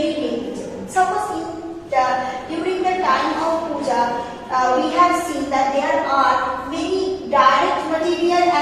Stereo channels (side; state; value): both; identical; correlation 1.00